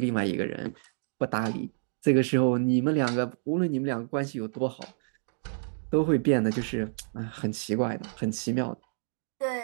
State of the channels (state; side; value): silent; left; digital silence